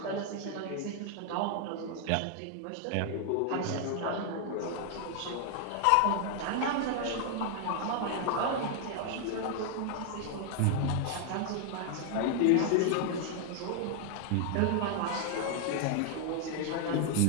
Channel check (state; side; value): different; both; correlation 0.00